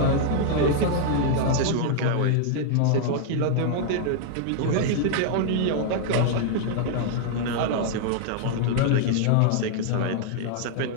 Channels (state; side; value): different; both; correlation 0.00